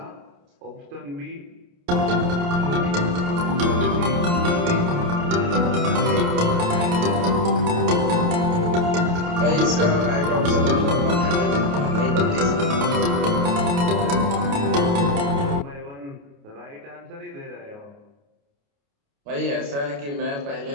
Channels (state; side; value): late; left; 28 ms